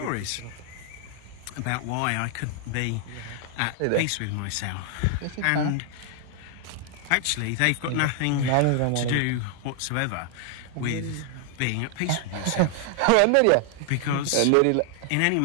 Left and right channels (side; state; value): both; different; correlation 0.00